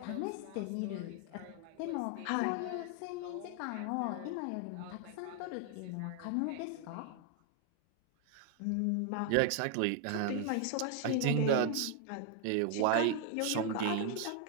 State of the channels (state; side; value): different; both; correlation 0.00